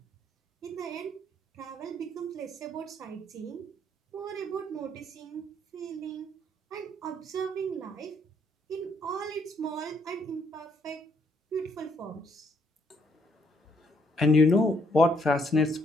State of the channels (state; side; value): normal; both; correlation 0.70